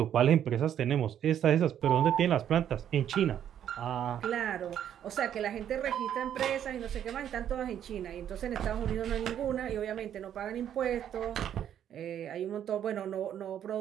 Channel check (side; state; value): left; quieter; 10.0 dB